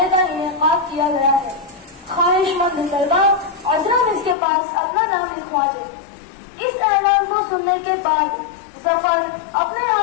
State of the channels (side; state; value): right; drops out; at 4.4 s